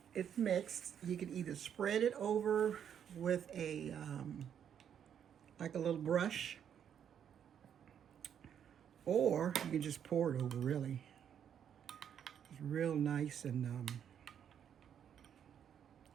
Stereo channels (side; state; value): left; quieter; 8.7 dB